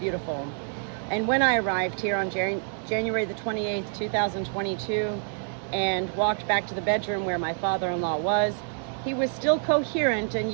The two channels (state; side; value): silent; left; 60 dB below the other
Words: And when I arrived here on January the 28th, 2022, and walked back to the bedroom where my father-in-law was, he was still coherent and